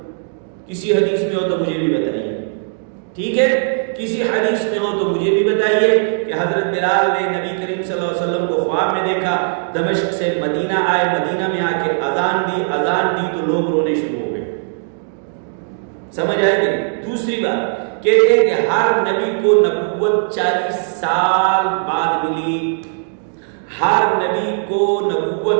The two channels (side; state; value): left; silent; digital silence